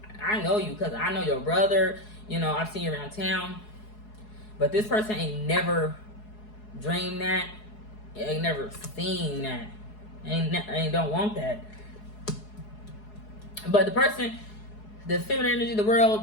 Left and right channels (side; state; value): right; late; 4.7 ms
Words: I know you because I know your brother. You know, I've seen you around town. But this person ain't never dreamed that. Ain't never seen that. Ain't don't want that. But the person, the feminine energy of the